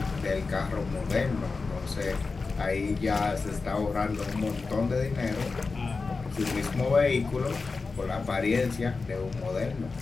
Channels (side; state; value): right; quieter; 4.2 dB